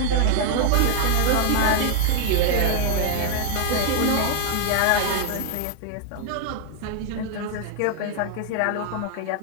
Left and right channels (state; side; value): different; both; correlation 0.00